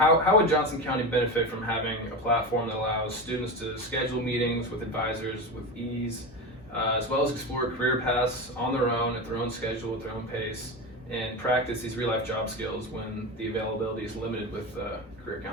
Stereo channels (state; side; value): normal; both; correlation 0.21